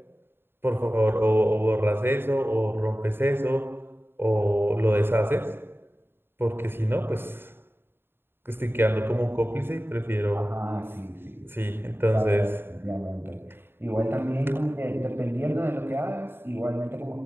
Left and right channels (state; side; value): late; left; 0.11 ms